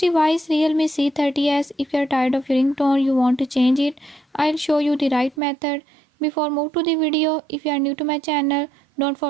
Realme C30s, if you are tired of your ringtone, you want to change it, I'll show you the right method. Before move to the video, if you are new to my channel, don't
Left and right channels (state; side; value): drops out; left; at 5.4 s